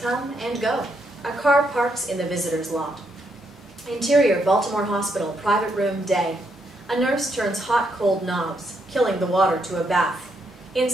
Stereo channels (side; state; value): both; normal; correlation 0.77